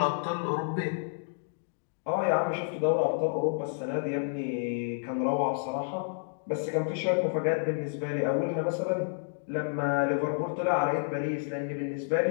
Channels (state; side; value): silent; right; digital silence